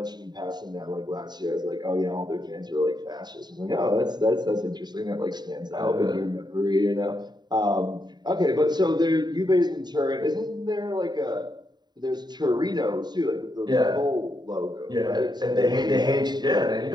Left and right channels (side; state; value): left; late; 0.20 ms